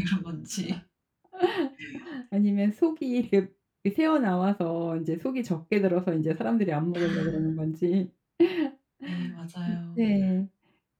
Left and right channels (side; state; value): both; identical; correlation 1.00